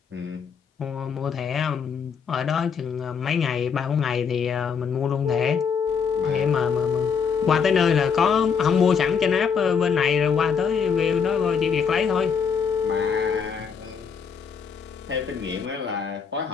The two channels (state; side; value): quieter; right; 6.4 dB